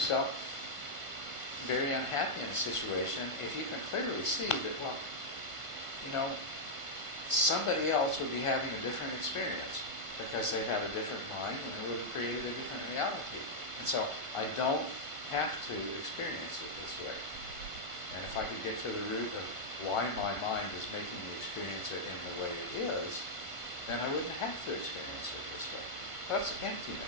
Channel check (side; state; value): right; late; 1.5 ms